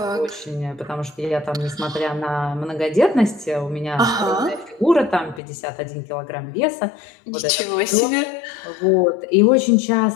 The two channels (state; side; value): drops out; right; at 5.4 s